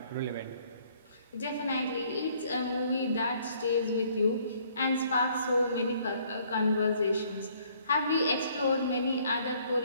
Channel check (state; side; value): inverted; both; correlation -0.63